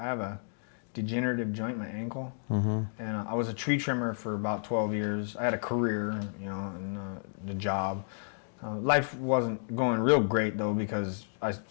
a degenerative joint, my ankle, and I was a tree trimmer for about 12 years. I had a career, you know, and the job. Life wasn't going real great though because I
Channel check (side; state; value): right; silent; digital silence